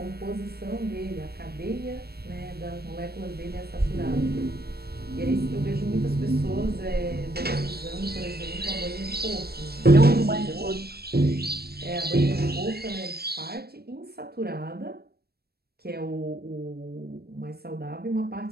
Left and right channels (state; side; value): late; left; 0.46 ms